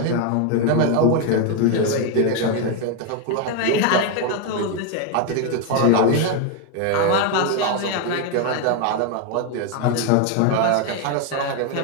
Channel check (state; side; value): different; both; correlation 0.01